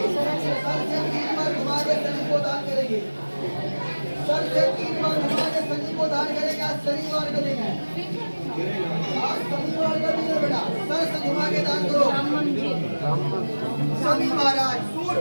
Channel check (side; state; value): both; inverted; correlation -1.00